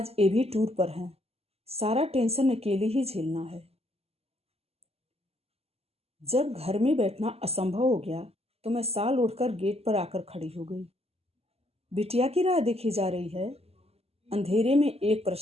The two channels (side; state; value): left; late; 0.29 ms